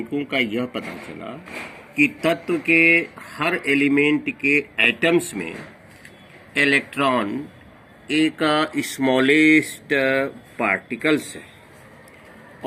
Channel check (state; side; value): identical; both; correlation 1.00